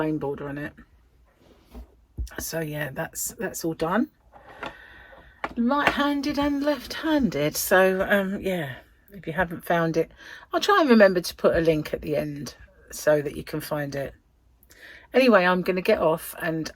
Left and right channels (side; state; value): both; identical; correlation 1.00